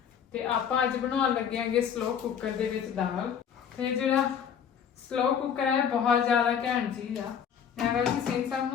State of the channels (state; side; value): quieter; right; 8.0 dB